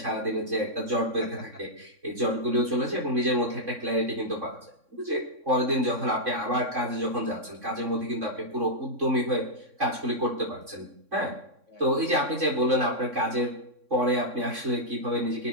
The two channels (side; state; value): left; late; 3.6 ms